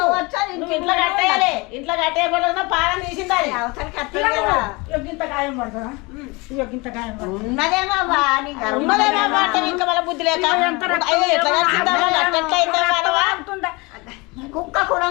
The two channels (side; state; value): right; quieter; 26.1 dB